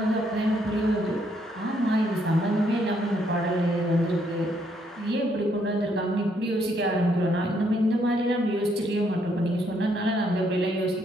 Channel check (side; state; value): both; normal; correlation 0.72